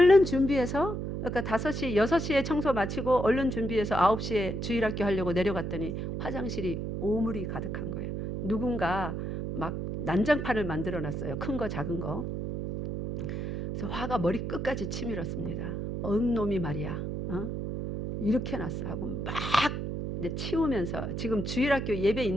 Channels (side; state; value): right; noise; hum, 4 dB below the sound